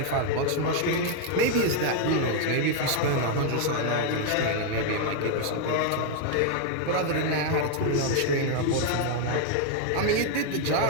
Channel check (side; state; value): both; different; correlation 0.00